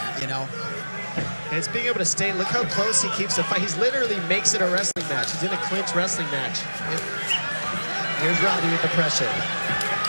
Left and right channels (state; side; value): inverted; both; correlation -1.00